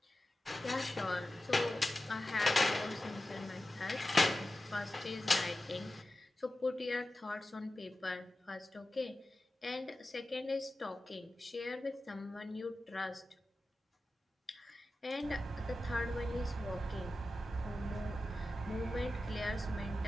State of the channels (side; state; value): both; normal; correlation 0.94